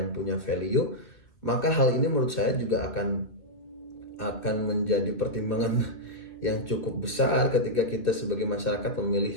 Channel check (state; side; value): late; right; 2.6 ms